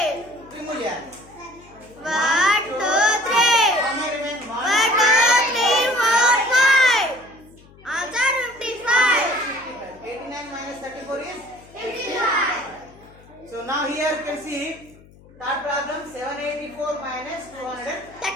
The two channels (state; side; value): noise; left; hum, 25 dB below the sound